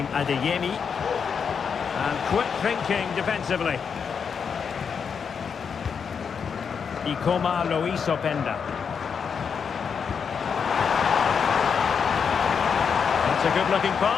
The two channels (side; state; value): right; quieter; 6.5 dB